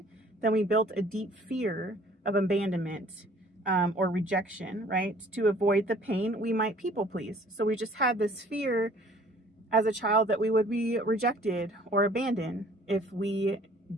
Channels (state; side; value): normal; both; correlation 0.54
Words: then we built a deep fear of abandonment or rejection, right? To avoid the pain, we might people please. So we just had this fear as a child that we would be rejected or abandoned if we